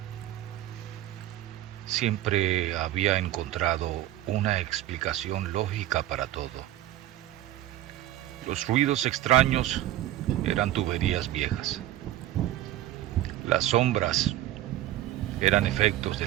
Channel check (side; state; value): left; quieter; 14.0 dB